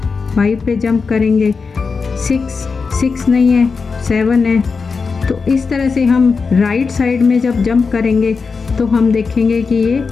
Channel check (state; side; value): quieter; right; 4.9 dB